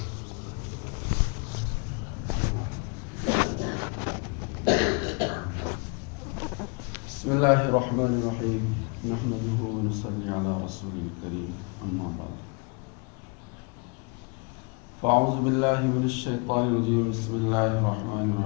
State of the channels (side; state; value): right; quieter; 33.6 dB